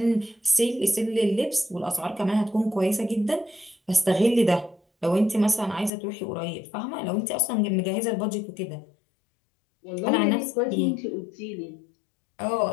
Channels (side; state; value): right; drops out; at 5.9 s